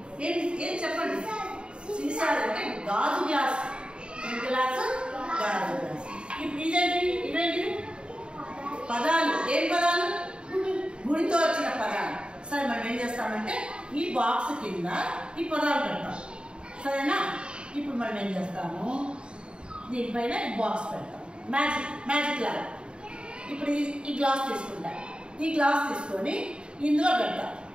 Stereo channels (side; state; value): left; late; 0.052 ms